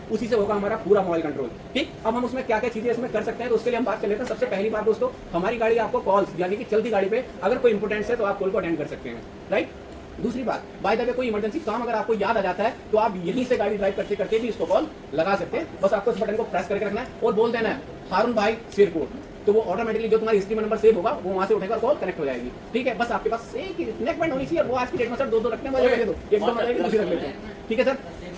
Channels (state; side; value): identical; both; correlation 1.00